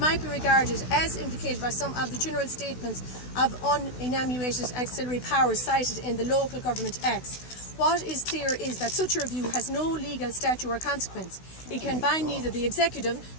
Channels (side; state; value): right; late; 16 ms